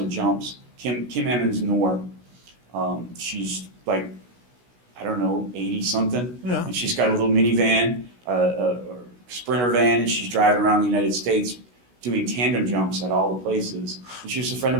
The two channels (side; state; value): left; late; 16 ms